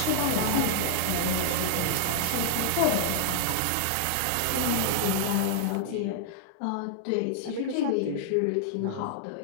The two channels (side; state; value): both; different; correlation -0.01